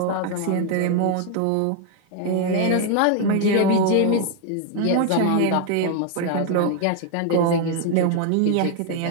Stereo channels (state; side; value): different; both; correlation 0.00